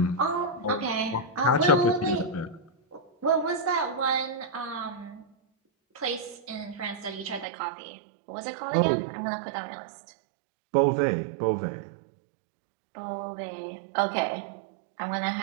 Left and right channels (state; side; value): drops out; left; at 7.5 s